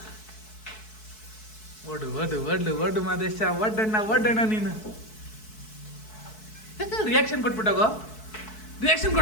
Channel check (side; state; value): right; late; 4.6 ms